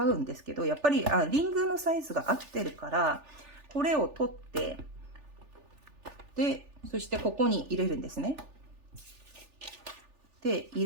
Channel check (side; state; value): left; late; 3.4 ms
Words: うんですけど、やっぱり、リングのサイズが合ってるから、これを取って、で、そしてここに入れるんですね。で、入